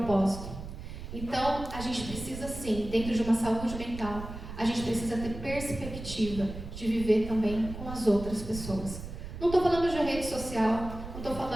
Então, a gente precisa sim, dentro de uma saúde mental, a gente precisa ter perspectiva de viver também com as outras pessoas. Não estou falando de rede social, não estou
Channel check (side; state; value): right; noise; rumble, 10 dB below the sound